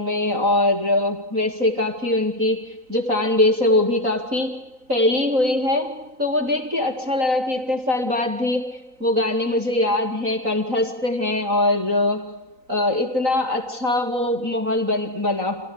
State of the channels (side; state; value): left; late; 3.9 ms